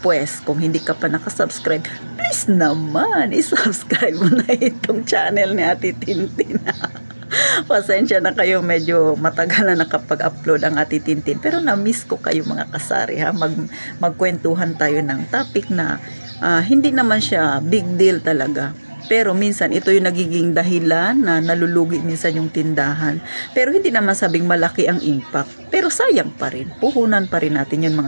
kung hindi ka pa nakasubscribe, please naman, isubscribe mo na itong channel ni ate Tintin. Pasensya na kayo, medyo matagal na nakapag-upload ang ati Tintin. Pero na-miss ko kayo mga kasari ha. Magkwentuhan tayo ng topic na hindi naman siya big deal talaga. Pero minsan ito yung nagiging dahilan na nalulugi minsan yung tindahan. Pero hindi naman sabing malaki ang impact. Pero sayang pa rin. Puhunan pa rin natin yun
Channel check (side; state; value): both; inverted; correlation -1.00